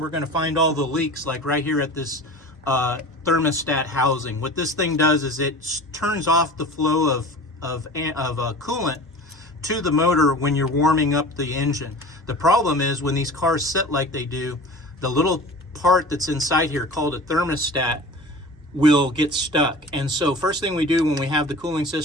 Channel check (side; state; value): both; normal; correlation 0.38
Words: going to find all the leaks, like right here at this thermostat housing. What this thing does is it turns off the flow of coolant to the motor when you're warming up the engine. The problem is when these cars sit like they do, the little part that's inside here called a thermostat will get stuck. And so first thing we do when we have the cooling